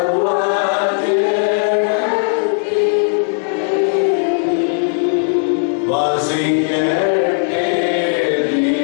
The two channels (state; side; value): silent; right; digital silence